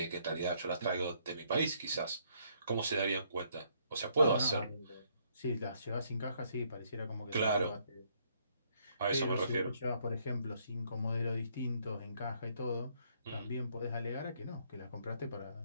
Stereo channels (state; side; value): inverted; both; correlation -0.69